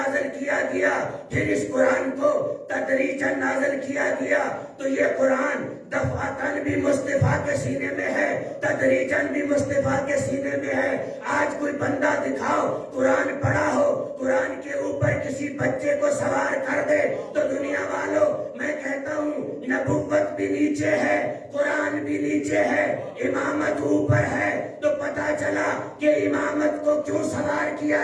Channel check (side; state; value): both; identical; correlation 1.00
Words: کیا گیا، پھر اس قرآن کو تدریجاً نازل کیا گیا۔ تو یہ قرآن دفعتاً بھی مصطفیٰ کے سینے میں ہے، تدریجاً بھی مصطفیٰ کے سینے میں ہے۔ آج کوئی بندہ دکھاؤ قرآن پڑھا ہو، قرآن کے اوپر کسی بچے کو سوار کر دے تو دنیا والوں میں کہتا ہوں نبوت بھی نیچے ہے، قرآن بھی نیچے ہے، امامت اوپر ہے۔ تو پتا چلا کہ امامت کو کیوں سوار کیا